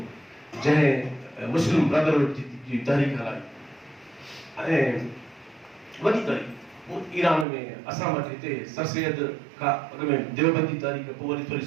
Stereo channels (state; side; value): drops out; left; at 7.5 s